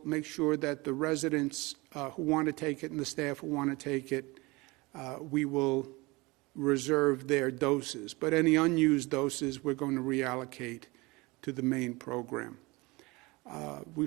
make sure that the residents who want to take it and the staff who want to take it, we will reserve their doses. But any unused doses, we're going to reallocate to the main program.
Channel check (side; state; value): left; quieter; 23.8 dB